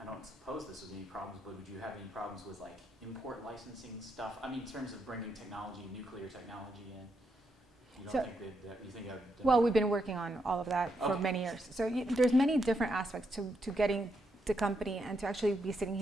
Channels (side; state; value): both; normal; correlation 0.80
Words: I don't suppose this would be any problems, but would you have any problems with like import licensing stuff? I mean, in terms of bringing technology, nuclear technology in. You don't think that you think? Well, we've been working on all of that for many years. So there's many different aspects to getting the company, and to actually be sitting